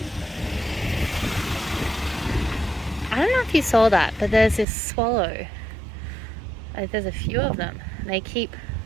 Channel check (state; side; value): drops out; left; at 4.7 s